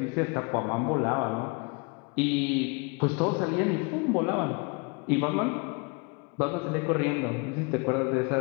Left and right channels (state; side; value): quieter; right; 31.2 dB